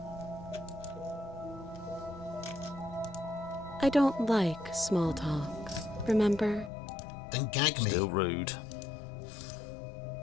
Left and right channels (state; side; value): drops out; right; at 6.7 s